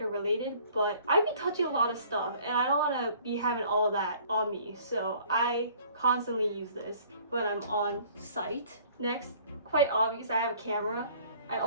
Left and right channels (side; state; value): both; inverted; correlation -0.54